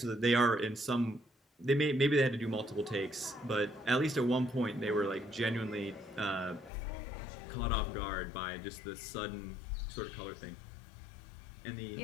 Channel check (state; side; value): drops out; right; at 6.7 s